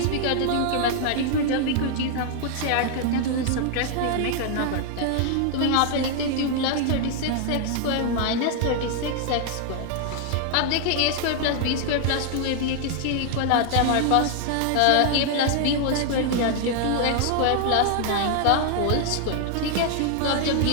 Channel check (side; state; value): both; different; correlation 0.00